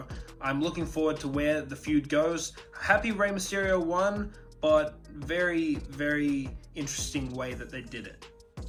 I'm looking forward to where the feud goes. Happy Rey Mysterio won, but very, very interesting way that they did it.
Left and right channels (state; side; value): identical; both; correlation 1.00